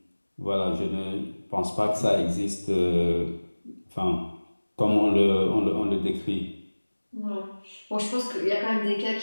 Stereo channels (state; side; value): inverted; both; correlation -1.00